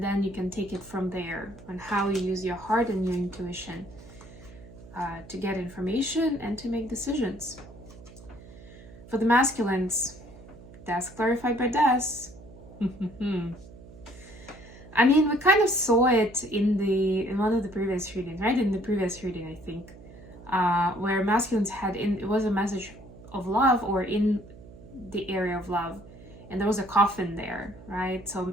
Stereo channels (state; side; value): noise; right; hum, 19 dB below the sound